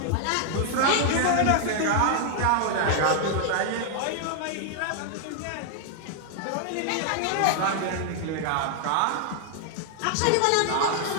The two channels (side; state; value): both; different; correlation 0.00